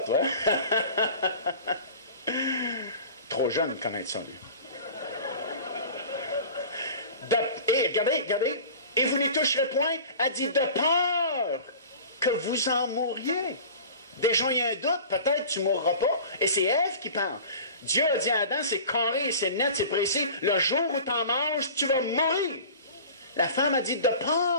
toi? Trop jeune de connaître ça, lui. Et regardez, regardez. Et vous n'y toucherez point. Elle dit, de peur que vous en mouriez. Déjà, il y a un doute, peut-être tu ne mourras pas. Et c'est Ève qui parle. Dieu a dit à Adam, c'est carré, c'est net, c'est précis. Le jour où tu en manges, tu vas mourir. La femme a dit, de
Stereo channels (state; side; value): inverted; both; correlation -0.39